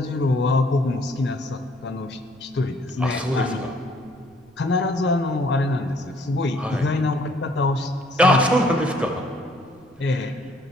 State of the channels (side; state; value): right; noise; rumble, 29 dB below the sound